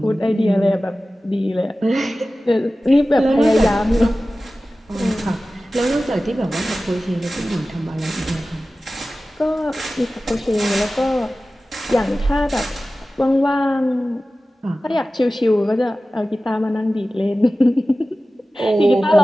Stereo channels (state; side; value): normal; both; correlation 0.96